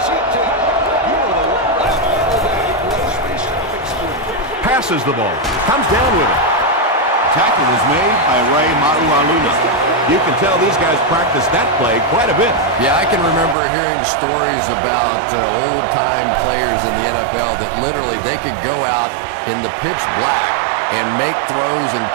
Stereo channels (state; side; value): drops out; left; at 13.6 s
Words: Passes the ball. Comes down with it. Tackle was made by Ray Maualuna. You can tell these guys practice that play quite a bit. Yeah, I can remember hearing stories about old-time players in the NFL that literally they could go out in the pitch black and make throws and